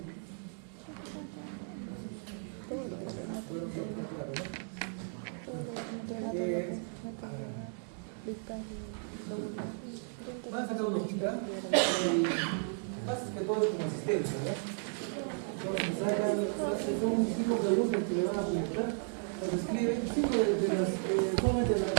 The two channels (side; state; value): left; silent; 55 dB below the other